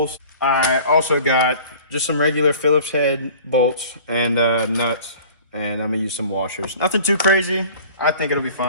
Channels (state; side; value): inverted; both; correlation -0.45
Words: I also got just some regular Phillips head bolts and nuts, and I'm gonna use some washers. Nothing too crazy. I think it'll be